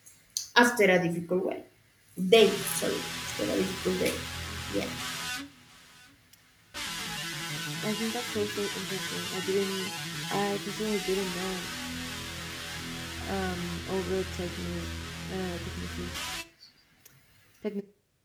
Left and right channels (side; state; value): both; identical; correlation 1.00